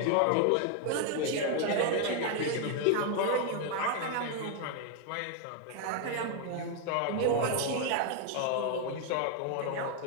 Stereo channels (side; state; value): both; different; correlation 0.01